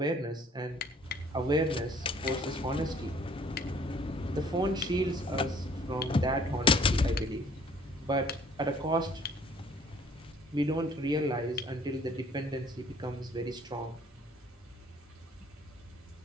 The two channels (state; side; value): normal; both; correlation 0.57